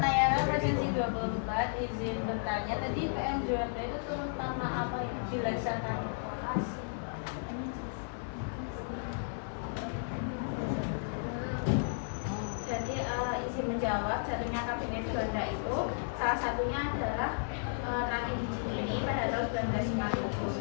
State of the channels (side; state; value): right; silent; 55 dB below the other